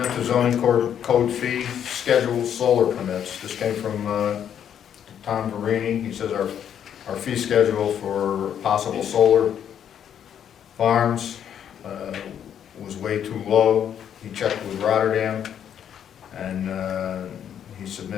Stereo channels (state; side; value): quieter; right; 9.2 dB